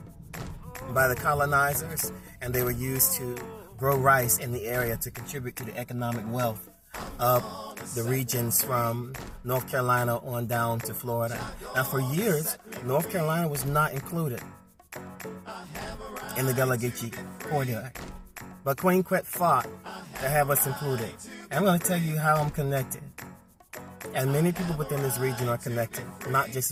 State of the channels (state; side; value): identical; both; correlation 1.00